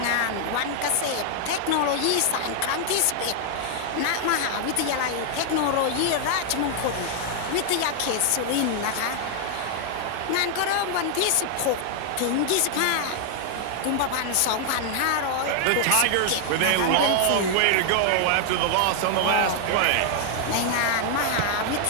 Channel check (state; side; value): different; both; correlation 0.00